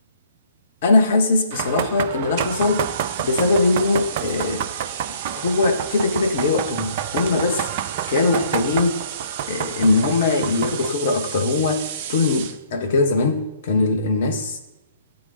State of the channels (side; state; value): both; inverted; correlation -0.60